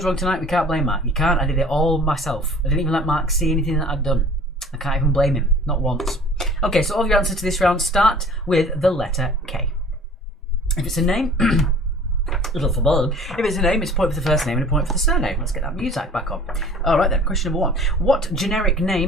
wrong tonight, we can't blame Mark. You can't. I did it all myself. I didn't even let Mark see anything that I'd done. I can't even blame him. Not once. Okay, so all of your answers to this round start with the letter K. If it's a name, little for bold. If it's a name, it's a point for the first name and a point for the surname. Let's get that music back on. Alright then, question number one. What generic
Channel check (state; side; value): normal; both; correlation 0.48